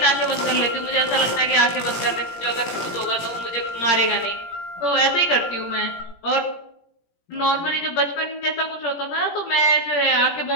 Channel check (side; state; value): right; late; 17 ms